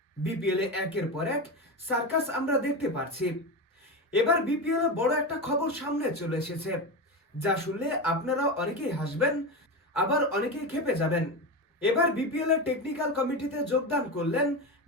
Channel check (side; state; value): both; normal; correlation 0.19